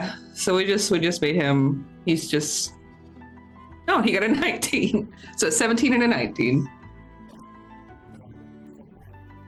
So we just made him. He's just. Oh, he got a 19. So 17 and a 19. Okay. So Rip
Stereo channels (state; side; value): identical; both; correlation 1.00